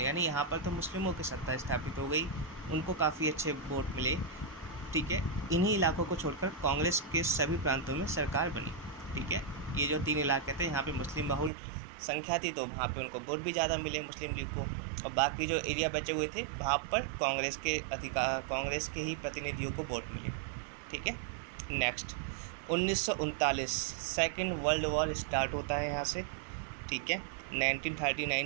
यानी यहाँ पर तो मुस्लिमों की सत्ता स्थापित हो गई, उनको काफ़ी अच्छे वोट मिले। ठीक है, इन्हीं इलाकों को छोड़कर कांग्रेस के सभी प्रांतों में सरकार बनी। ठीक है, ये जो 3 इलाके थे यहाँ पे मुस्लिम बहुल संख्या थी, तो वहाँ पे उनको वोट भी ज़्यादा मिले मुस्लिम लीग को, और बाकी जो एरिया बचे हुए थे वहाँ पर कांग्रेस के ही प्रतिनिधियों को वोट मिले। ठीक है, next 1939 second world war start होता है यहाँ से। ठीक है,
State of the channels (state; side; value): drops out; left; at 11.5 s